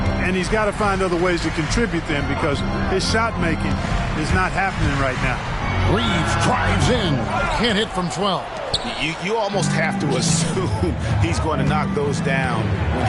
And he's got to find other ways to contribute then because his shot making is not happening right now. Reeves drives in. Can't hit from 12. You almost have to assume he's going to knock those down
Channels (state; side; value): identical; both; correlation 1.00